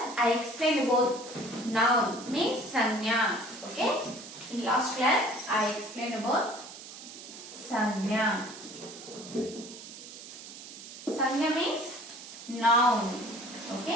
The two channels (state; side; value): noise; right; hiss, 14 dB below the sound